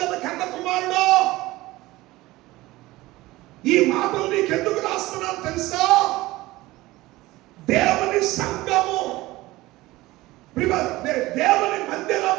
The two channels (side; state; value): left; quieter; 18.8 dB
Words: కన్న కుమారుడా, ఈ మాటలు నీకెందుకు రాస్తున్నాను తెలుసా? దేవుని సంఘము, దేవుని